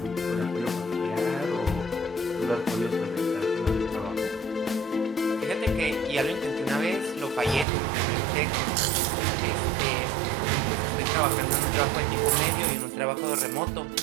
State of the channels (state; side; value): drops out; left; at 7.7 s